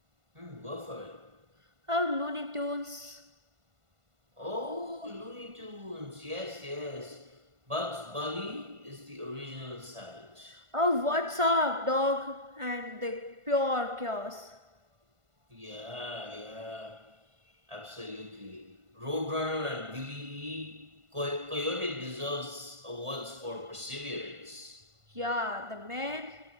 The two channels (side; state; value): left; late; 1.5 ms